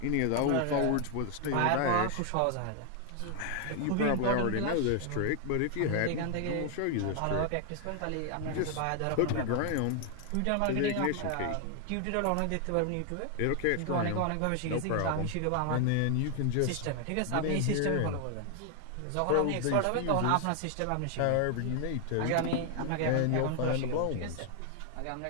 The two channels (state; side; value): different; both; correlation 0.00